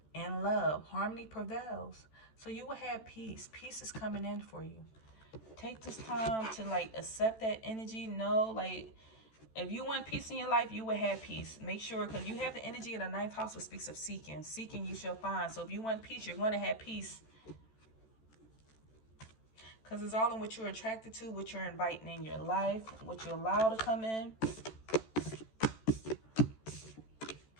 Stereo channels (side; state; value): right; late; 14 ms